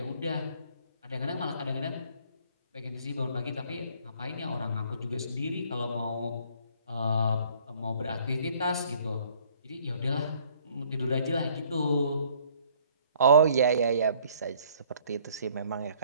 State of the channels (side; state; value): both; inverted; correlation -0.59